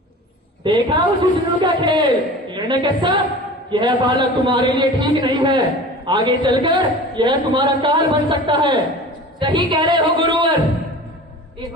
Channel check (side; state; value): both; normal; correlation 0.38